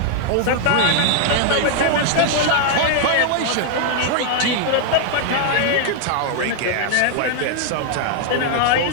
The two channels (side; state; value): both; different; correlation 0.00